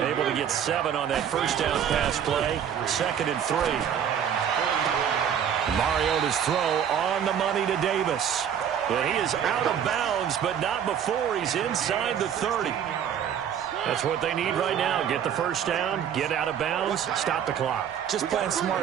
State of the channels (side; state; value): left; quieter; 8.7 dB